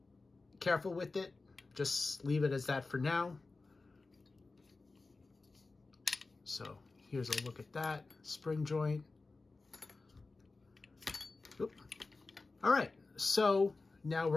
careful with it. Just leave it as that for now. So here's a look at that spring joint. Oop. All right, so now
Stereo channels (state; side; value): quieter; right; 3.7 dB